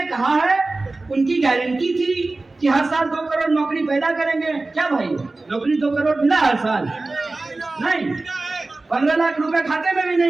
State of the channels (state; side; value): quieter; left; 3.2 dB